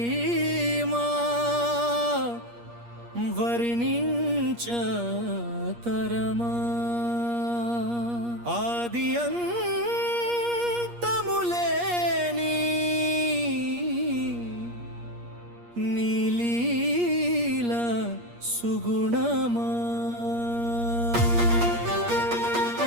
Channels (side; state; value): left; late; 8.5 ms